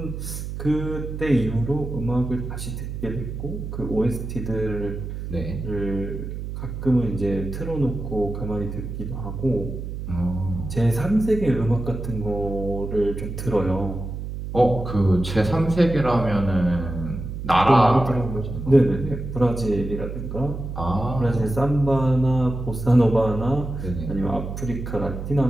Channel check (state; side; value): noise; right; hum, 7 dB below the sound